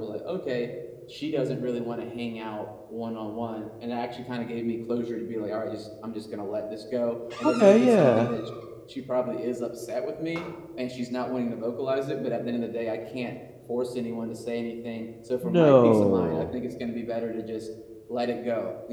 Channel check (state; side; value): identical; both; correlation 1.00